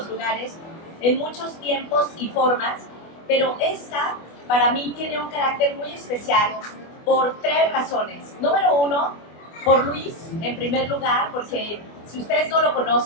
lugares, en muchos tiempos y formas, pero esta para mí tiene un carácter muy especial por tres razones. Número uno, por Luis, en primer lugar, porque si ustedes no lo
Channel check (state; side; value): late; right; 24 ms